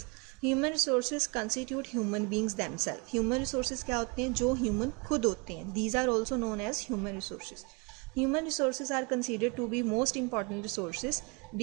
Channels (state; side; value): quieter; left; 30.8 dB